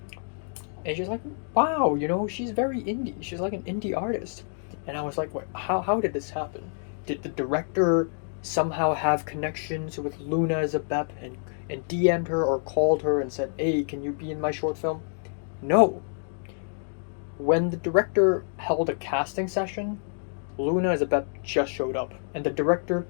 And she's like, wow, she's very indie. She's like an indie artist. And I was like, wait, how did this happen? Did the director somehow have connections with Luna as a Bep and DM'd her or called her and said, hey, can you be in my short film? No. When the director held a casting session, Luna as a Bep just showed up. And the director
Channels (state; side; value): silent; right; digital silence